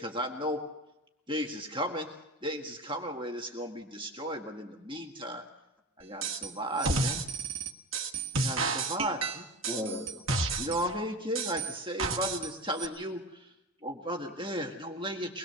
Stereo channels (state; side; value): normal; both; correlation 0.28